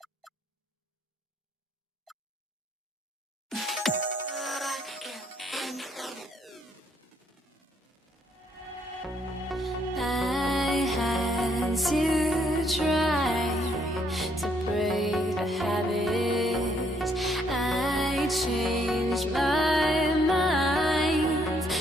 I had to try to break the habit. I changed my mind.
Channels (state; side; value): normal; both; correlation 0.70